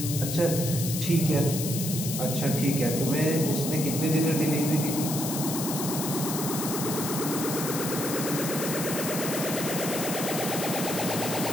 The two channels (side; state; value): left; noise; hiss, 4 dB below the sound